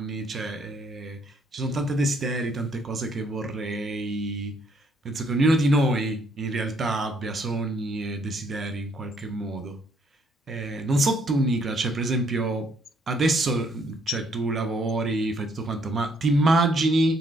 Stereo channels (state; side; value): normal; both; correlation 0.68